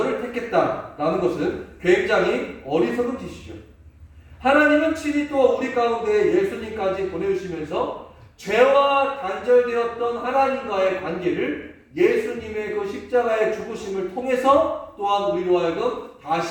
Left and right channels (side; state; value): both; identical; correlation 1.00